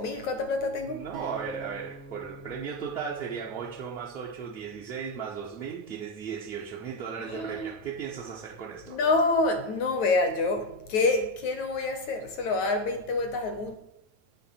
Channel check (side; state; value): right; late; 9.3 ms